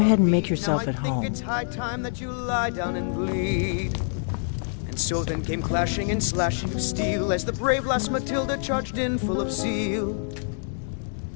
and me. make yourself Now at I think home. It's high time that you lie down and bleed. And so then came clashing and slashing of steel as the brave lass Matilda charged in full of zeal.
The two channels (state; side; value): silent; right; 61 dB below the other